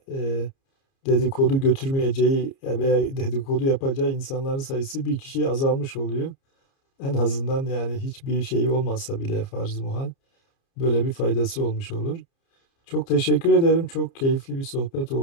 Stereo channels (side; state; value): right; late; 30 ms